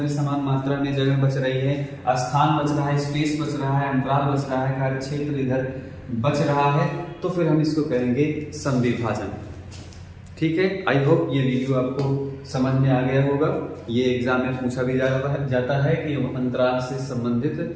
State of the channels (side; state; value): both; identical; correlation 1.00